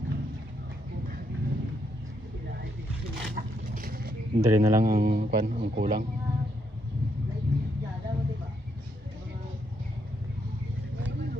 Dali na lang ang kulang.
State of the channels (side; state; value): both; normal; correlation 0.77